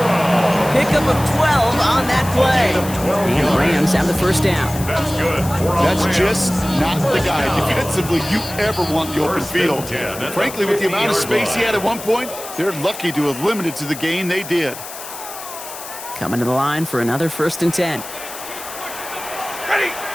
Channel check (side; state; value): left; noise; hiss, 12 dB below the sound